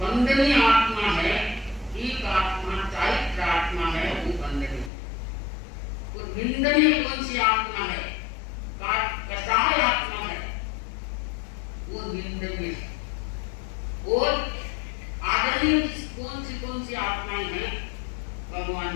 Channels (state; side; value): drops out; right; at 4.9 s